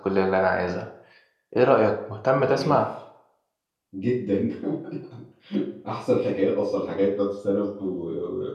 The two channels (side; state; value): both; identical; correlation 1.00